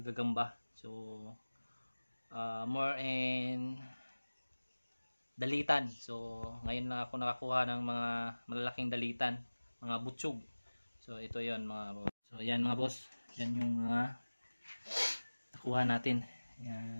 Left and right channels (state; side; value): inverted; both; correlation -1.00